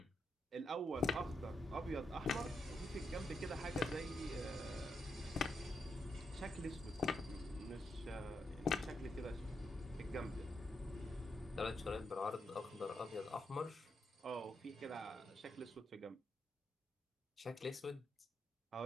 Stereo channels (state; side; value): normal; both; correlation 0.82